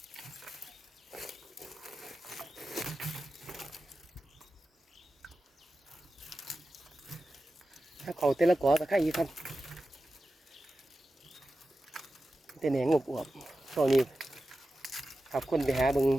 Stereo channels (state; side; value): normal; both; correlation 0.93